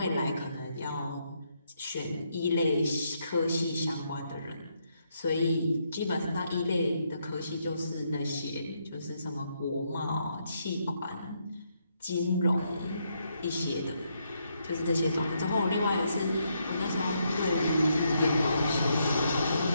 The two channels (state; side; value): inverted; both; correlation -0.77